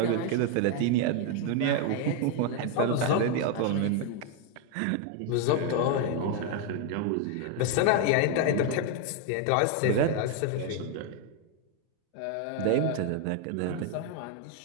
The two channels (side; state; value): both; different; correlation 0.01